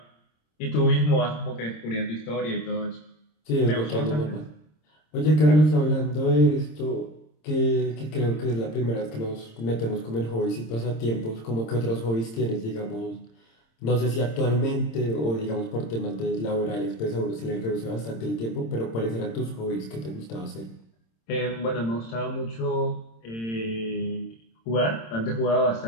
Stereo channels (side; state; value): right; late; 26 ms